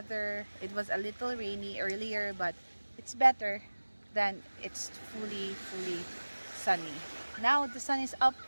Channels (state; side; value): inverted; both; correlation -1.00